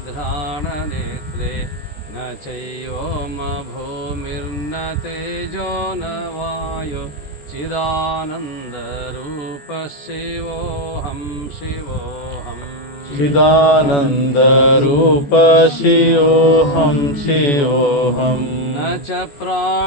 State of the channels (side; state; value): right; late; 14 ms